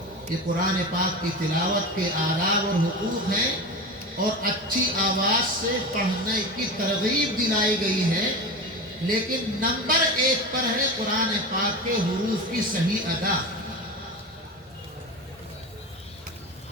یہ قرآن پاک کی تلاوت کے آداب اور حقوق ہیں، اور اچھی آواز سے پڑھنے کی ترغیب دلائی گئی ہے، لیکن نمبر 1 پر ہے قرآن پاک کے حروف کی صحیح ادا۔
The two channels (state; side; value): normal; both; correlation 0.26